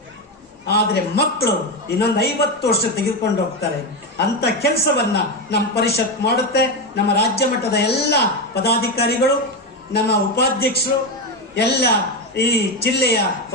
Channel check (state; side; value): normal; both; correlation 0.12